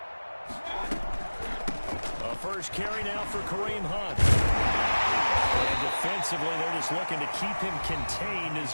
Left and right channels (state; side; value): inverted; both; correlation -1.00